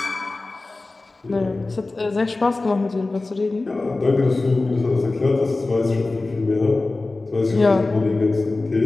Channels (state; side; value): quieter; right; 3.3 dB